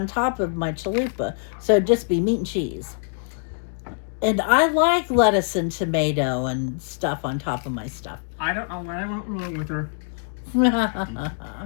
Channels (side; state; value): right; silent; digital silence